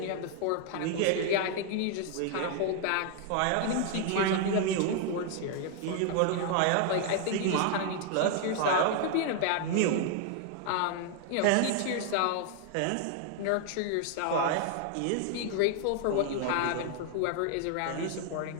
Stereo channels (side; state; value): both; different; correlation 0.00